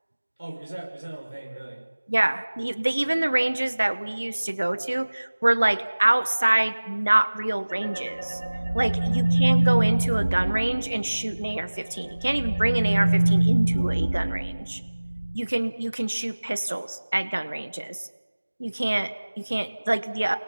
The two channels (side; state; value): both; inverted; correlation -1.00